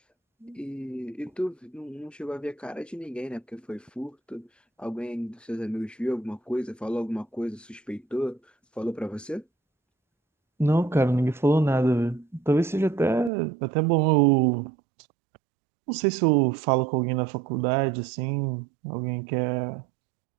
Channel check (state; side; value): drops out; left; at 13.3 s